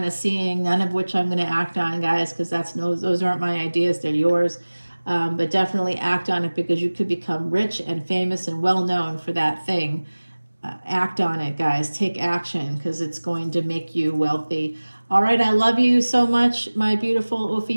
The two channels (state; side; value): inverted; both; correlation -1.00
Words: of seeing, none of which I'm going to act on, guys, because those aren't my ideas. They're yours. But definitely act on it, because you could become rich and famous and well known for that thing. Act on it, guys. Take action, because it's going to make you wealthy. All right, I love you so much, my beautiful